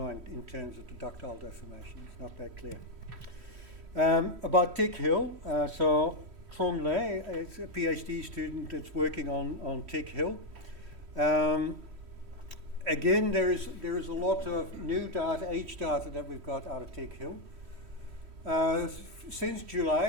in terms of the ductile deformation. It's not that clear. About Tick Hill, so Trong Le is a PhD student that's working on Tick Hill. Again, there is a lot of new data, age data that we've got out of Tick Hill. Since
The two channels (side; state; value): left; late; 3.1 ms